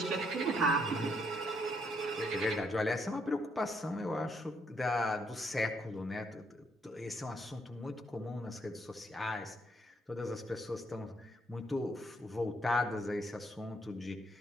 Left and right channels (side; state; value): both; normal; correlation 0.72